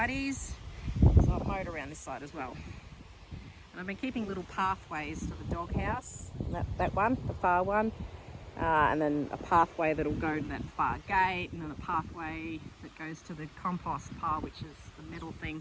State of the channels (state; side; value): identical; both; correlation 1.00